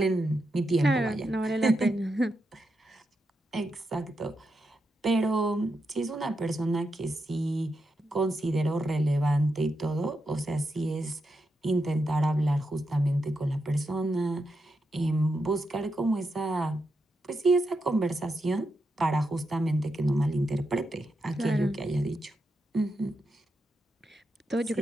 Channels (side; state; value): both; normal; correlation 0.85